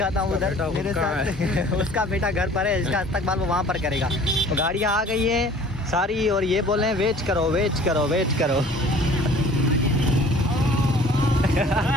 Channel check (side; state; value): both; normal; correlation 0.50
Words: हूँ उधर मेरे साथ। उसका बेटा घर पर है, इसका इस्तकबाल वो वहाँ पर करेगा। तो गाड़ियाँ आ गई हैं सारी, और ये बोल रहे हैं वेट करो वेट करो वेट करो।